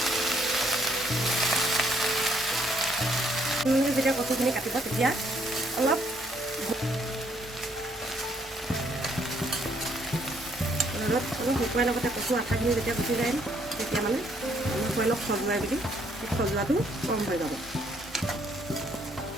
যেতিয়া কচুখিনি কাটিব তেতিয়া অলপ ৰ'দত অলপ শুকুৱাই লগতে কচু আঠাখিনি যেতিয়া গুচি যায় তেতিয়া মানে অলপ অলপ খজুৱাই বুলি সেই খজুৱাটো কম হৈ যাব।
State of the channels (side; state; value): both; normal; correlation 0.68